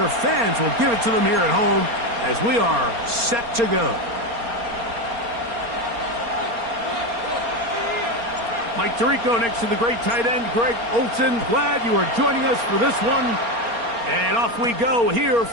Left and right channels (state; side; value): late; left; 4.3 ms